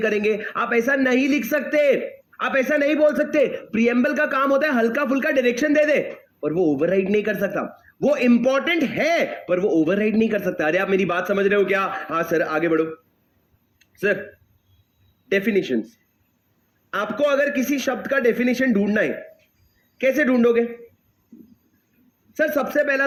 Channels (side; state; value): both; identical; correlation 1.00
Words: आप ऐसा नहीं लिख सकते, आप ऐसा नहीं बोल सकते। प्रियम्बल का काम होता है हल्का फुल्का डायरेक्शन दे दे, पर वो ओवरराइड नहीं कर सकता। वो इंपॉर्टेंट है पर वो ओवरराइड नहीं कर सकता। अरे आप मेरी बात समझ रहे हो क्या? हाँ सर आगे बढ़ो। सर डेफिनेशंस, आपको अगर किसी शब्द का डेफिनेशन ढूंढना है कैसे ढूंढोगे? सर सबसे पहला